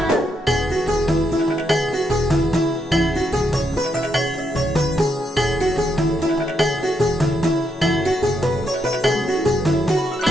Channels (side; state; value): both; normal; correlation 0.79